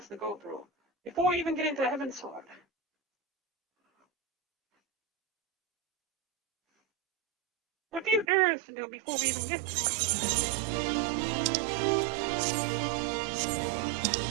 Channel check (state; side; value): drops out; left; at 8.2 s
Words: to go through before we even get into Heaven's Sword. A few errands to do before we even get there.